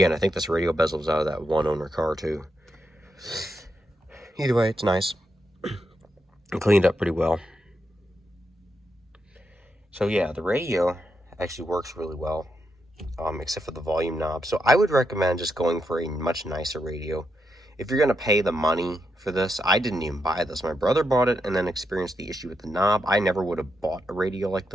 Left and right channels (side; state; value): both; normal; correlation 0.83